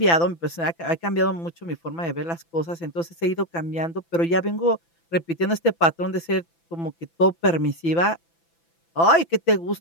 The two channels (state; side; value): late; right; 6.0 ms